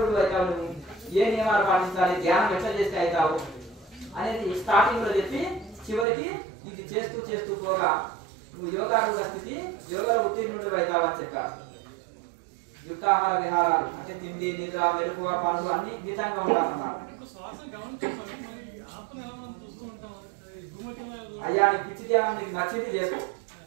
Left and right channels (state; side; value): drops out; left; at 6.1 s